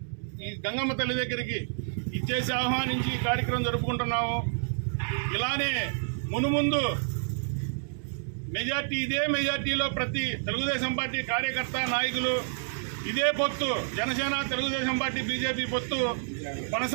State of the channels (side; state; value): left; silent; 59 dB below the other